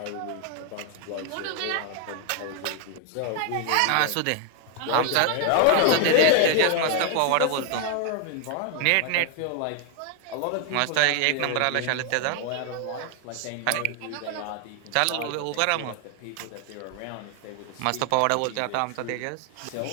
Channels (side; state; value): both; different; correlation 0.00